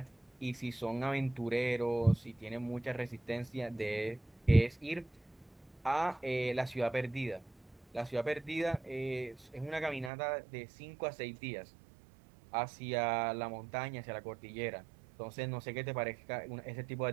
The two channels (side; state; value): left; drops out; at 10.1 s